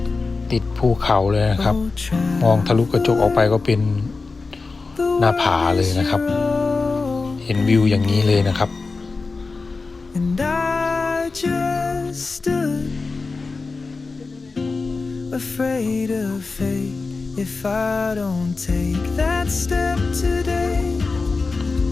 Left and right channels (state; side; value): quieter; right; 4.0 dB